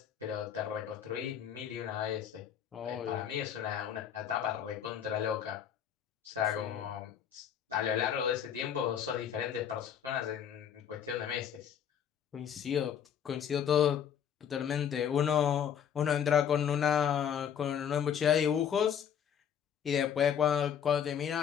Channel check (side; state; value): right; quieter; 8.6 dB